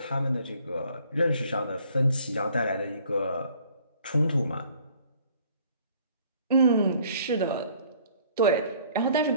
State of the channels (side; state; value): both; inverted; correlation -0.57